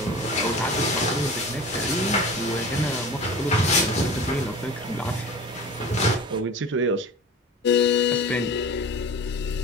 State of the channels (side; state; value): both; normal; correlation 0.36